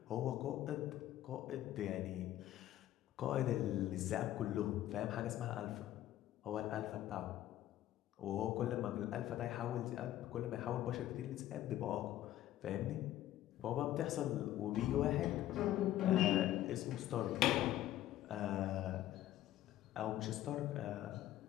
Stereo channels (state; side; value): quieter; right; 13.4 dB